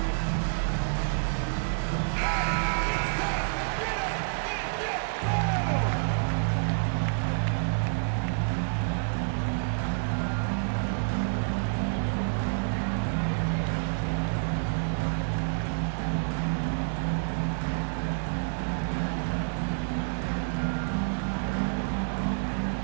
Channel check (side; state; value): left; silent; digital silence